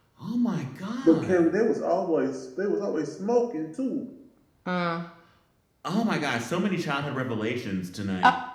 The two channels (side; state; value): both; identical; correlation 1.00